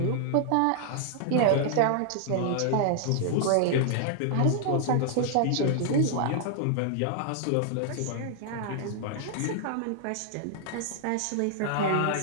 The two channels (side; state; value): both; different; correlation -0.01